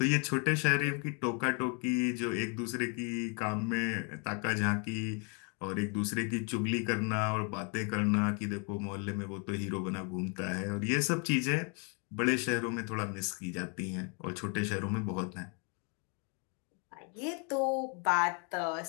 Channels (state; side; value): quieter; right; 36.7 dB